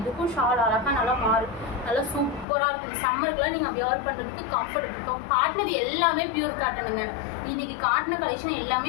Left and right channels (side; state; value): right; drops out; at 2.5 s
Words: இதுக்கும் ஷால் அழகாக நல்லா சூப்பராக இருக்குது. சம்மருக்குலாம் நீங்கள் வியர் பண்ணுறதுக்கு கம்ஃபர்டபுள். காட்டினது இது எல்லாமே பியூர் காட்டனுங்க. இன்னைக்கு காட்டின கலெக்ஷன் எல்லாமே